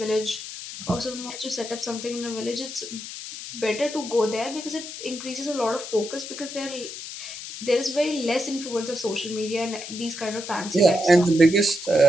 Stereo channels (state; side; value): noise; left; hiss, 10 dB below the sound